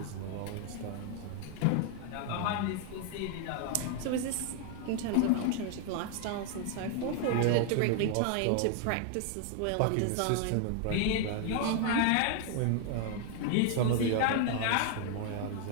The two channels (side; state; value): both; different; correlation 0.00